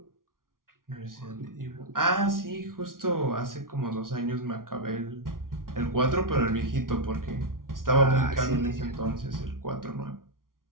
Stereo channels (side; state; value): left; late; 0.91 ms